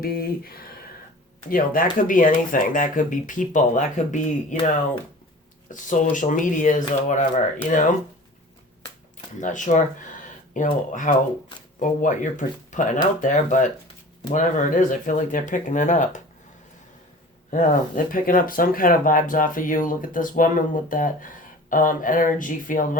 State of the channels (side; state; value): both; normal; correlation 0.41